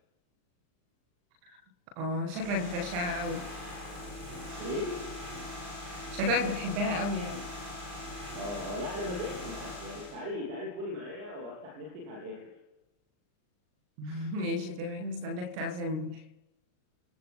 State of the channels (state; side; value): late; left; 39 ms